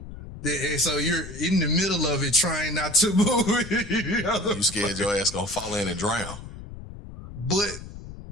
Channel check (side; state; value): left; noise; rumble, 13 dB below the sound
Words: So you're in the middle of it trying not to move. You scared your ass gonna fall in and drown. But